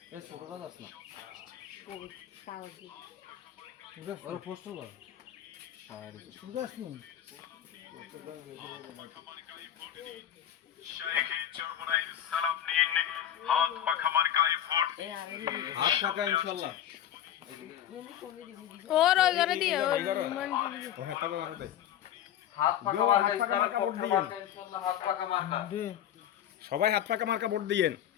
হাত পাখা মার্কায় ভোট। হাত ফাঁকা ইনশাল্লাহ। और घर दिए और হাত ফাঁকা মার্কা ইসলামের পক্ষে মার্কা ইনশাল্লাহ, হাত ফাঁকা মার্কা। সবাই হাত পাকা মার্কা ভোট দিয়েন।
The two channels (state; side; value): quieter; right; 10.8 dB